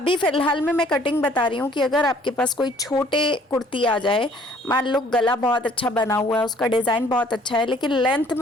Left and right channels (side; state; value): both; normal; correlation 0.58